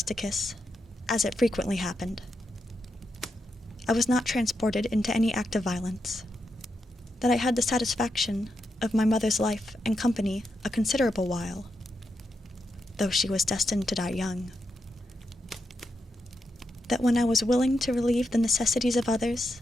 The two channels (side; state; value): both; normal; correlation 0.85